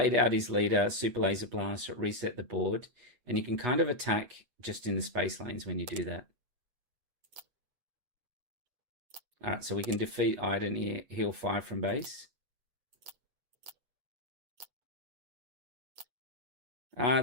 out his leader, super laser blast, reset the board, and you can kind of attack just in the space lanes when you do that. All right, so we can defeat Iden here, heal 5 from base.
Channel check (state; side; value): late; left; 8.2 ms